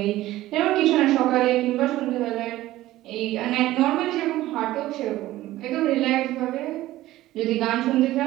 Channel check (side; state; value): left; quieter; 15.8 dB